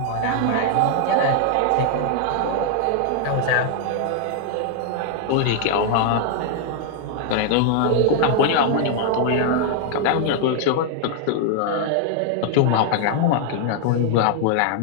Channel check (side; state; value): both; different; correlation 0.00